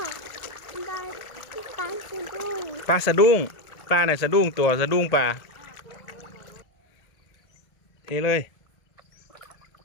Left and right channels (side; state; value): right; late; 1.7 ms